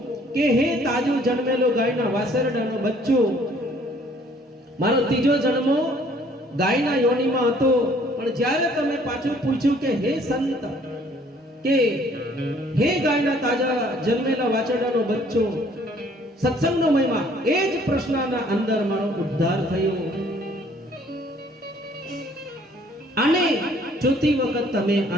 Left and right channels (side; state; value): both; normal; correlation 0.59